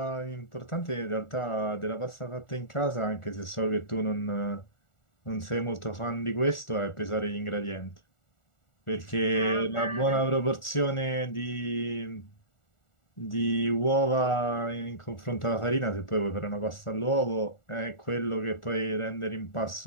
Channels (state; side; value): late; right; 1.4 ms